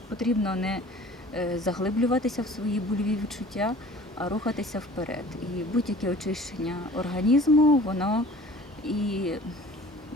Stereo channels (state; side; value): normal; both; correlation 0.47